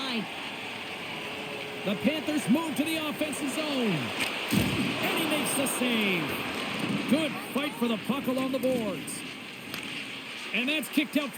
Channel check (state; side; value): identical; both; correlation 1.00